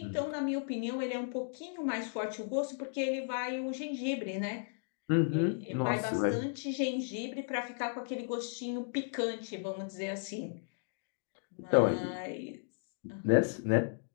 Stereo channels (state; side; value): silent; right; digital silence